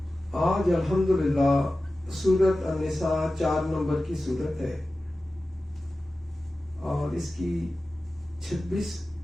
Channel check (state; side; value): normal; both; correlation 0.95